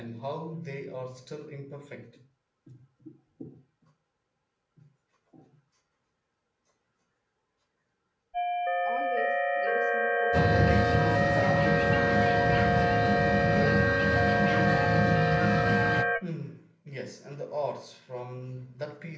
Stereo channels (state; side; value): identical; both; correlation 1.00